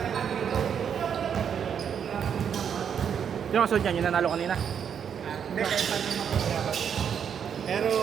Yung kasunod niyan, yung nanalo kanina. Hindi, kahit paano yung mapagyabat. Pero,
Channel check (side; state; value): left; quieter; 7.8 dB